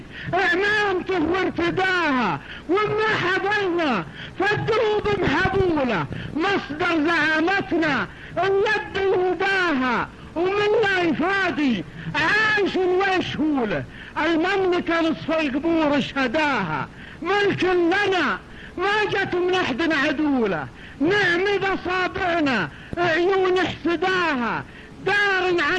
اعمامته وارتداها، وما حضرنا فالدروب محبوله، مصدر زعامتنا اليد يهداها، ومن لا يفادي عايش ويشهوله، المملكة نصف القبور شهداها، ملك لنا ما جت من احد عدوله، نعمد اصابعنا عيون احسداها، دار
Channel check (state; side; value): identical; both; correlation 1.00